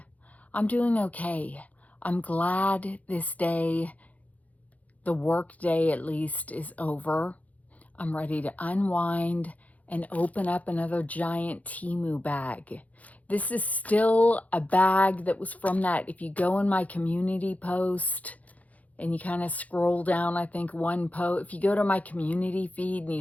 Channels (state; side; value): late; right; 0.072 ms